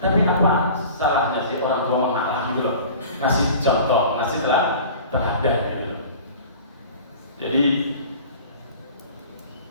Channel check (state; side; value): inverted; both; correlation -0.42